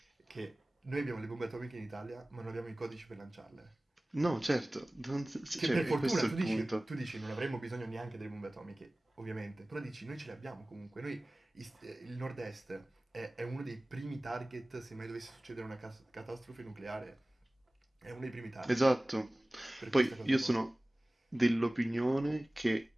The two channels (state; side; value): normal; both; correlation 0.98